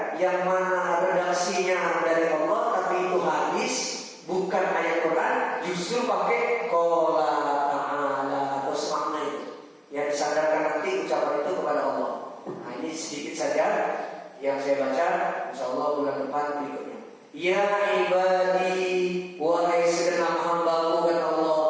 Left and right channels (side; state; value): both; identical; correlation 1.00